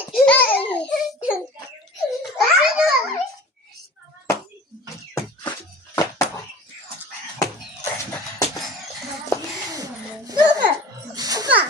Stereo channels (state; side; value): normal; both; correlation 0.40